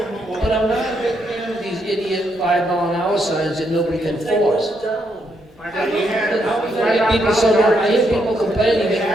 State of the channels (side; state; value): both; normal; correlation 0.77